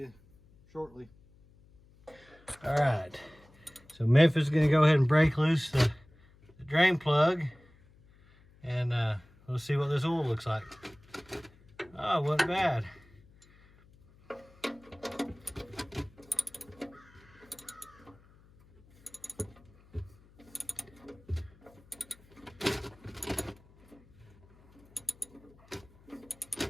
shortly. All right, so Memphis is going to go ahead and break loose the drain plug, and we'll see what this oil looks like. Oh, it wasn't bad.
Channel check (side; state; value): left; noise; hum, 27 dB below the sound